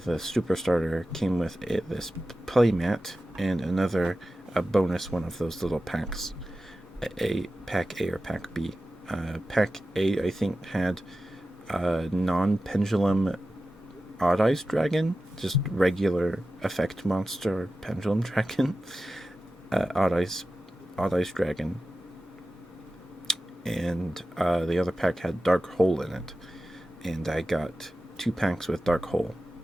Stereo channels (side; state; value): both; normal; correlation 0.94